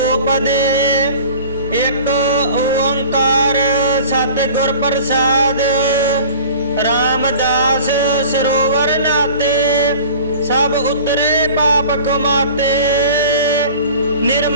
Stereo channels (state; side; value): inverted; both; correlation -0.42